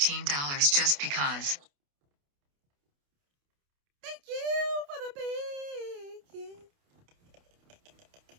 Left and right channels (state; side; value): late; left; 28 ms